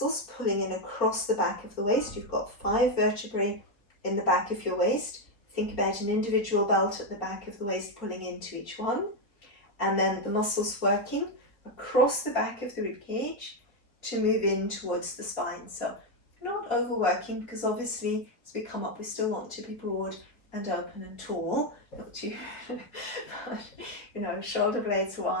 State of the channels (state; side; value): late; right; 4.3 ms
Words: pulling in across the back of the waist. You've got 5 vertebrae in the back of your waist. Think about an individual belt at the back of the waist pulling into each one. And then the muscles working across the back of the rib cage to move in towards the spine. So not overworking, because obviously as we come up we still want to be broad and open and tall, not too but, you know, shoulder blades